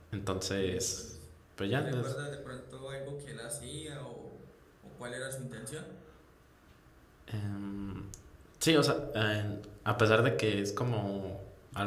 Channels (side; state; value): both; identical; correlation 1.00